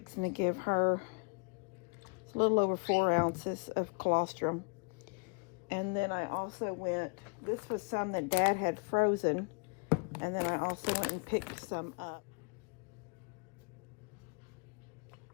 to give her a little over 4 ounces of colostrum. And then I also went, this was some that Dad had frozen. And then I also went and picked some up.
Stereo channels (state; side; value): quieter; right; 35.6 dB